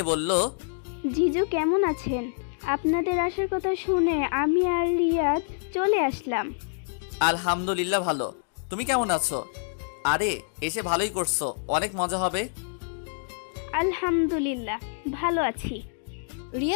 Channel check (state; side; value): silent; right; digital silence